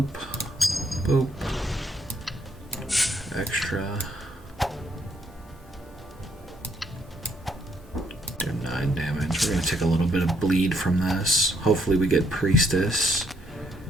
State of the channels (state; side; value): normal; both; correlation 0.72